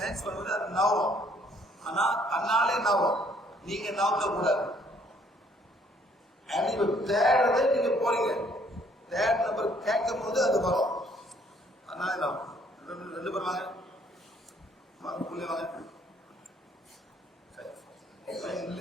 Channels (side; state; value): both; normal; correlation 0.63